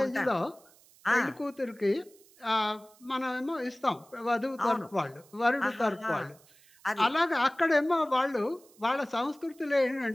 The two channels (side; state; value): right; noise; hiss, 27 dB below the sound